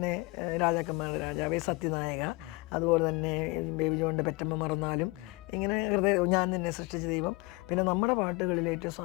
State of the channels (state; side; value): quieter; right; 24.8 dB